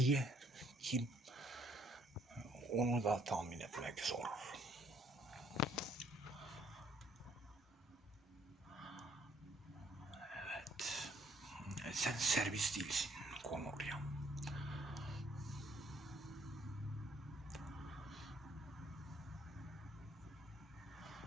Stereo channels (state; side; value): normal; both; correlation 0.65